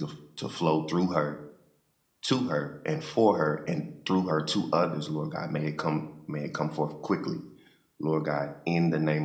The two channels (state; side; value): identical; both; correlation 1.00